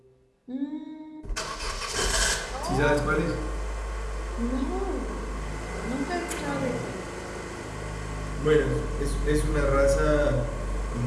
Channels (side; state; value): both; identical; correlation 1.00